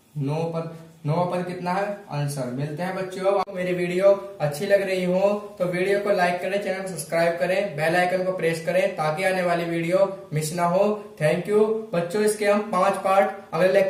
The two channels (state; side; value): identical; both; correlation 1.00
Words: 9 पद कितना है आंसर। मिलते हैं बच्चों, मेरी वीडियो अच्छी लग रही हो तो वीडियो को लाइक करें, चैनल को सब्सक्राइब करें, बेल आइकन को प्रेस करें ताकि आने वाली वीडियो मिस ना हो। थैंक यू बच्चों, इसके हम 5 पार्ट अगले